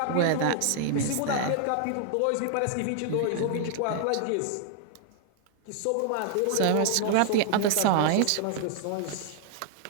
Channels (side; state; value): both; different; correlation 0.00